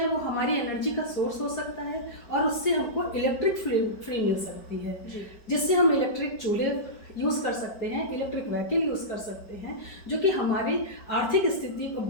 वो हमारी एनर्जी का सोर्स हो सकता है और उससे हमको इलेक्ट्रिक फ्री मिल सकती है, जिससे हम इलेक्ट्रिक चूल्हे यूज़ कर सकते हैं, इलेक्ट्रिक व्हीकल यूज़ कर सकते हैं, जो कि हमारी आर्थिक स्थिति को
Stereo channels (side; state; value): right; late; 4.9 ms